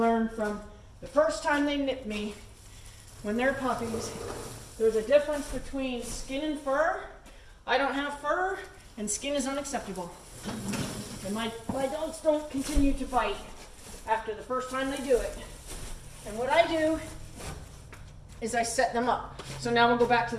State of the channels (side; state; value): both; identical; correlation 1.00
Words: from the first time they nip me when they're puppies. There's a difference between skin and fur. I don't have fur, and skin is unacceptable. And my dogs don't continue to bite after the first time they do it. And what I do is I set them up. So now we'll go back to